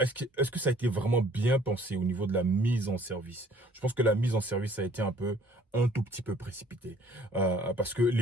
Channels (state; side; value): normal; both; correlation 0.56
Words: que ça a été vraiment bien pensé au niveau de la mise en service? Je pense que la mise en service a été un tout petit peu précipitée. Parce que